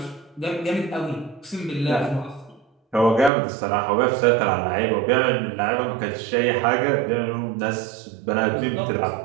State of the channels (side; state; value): left; drops out; at 3.3 s